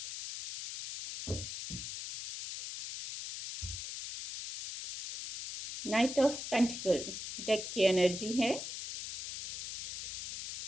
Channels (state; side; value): noise; left; hiss, 7 dB below the sound